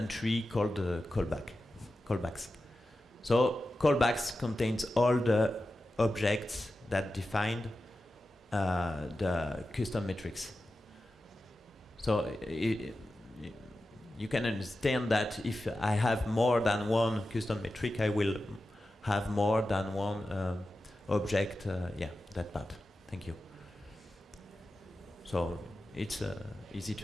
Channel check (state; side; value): normal; both; correlation 0.92